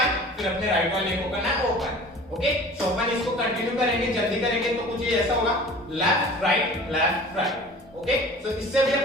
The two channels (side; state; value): both; normal; correlation 0.43